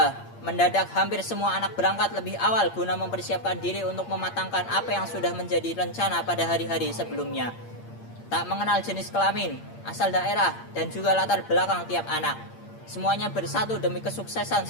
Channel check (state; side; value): late; right; 8.7 ms